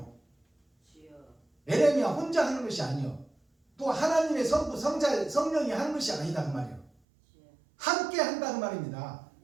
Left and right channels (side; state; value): left; drops out; at 6.9 s